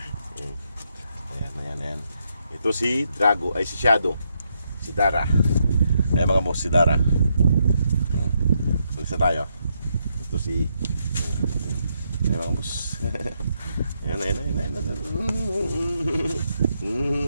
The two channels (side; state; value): both; inverted; correlation -0.78